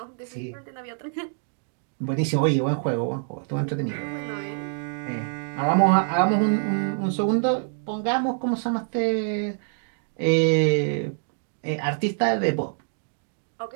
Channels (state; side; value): silent; left; 61 dB below the other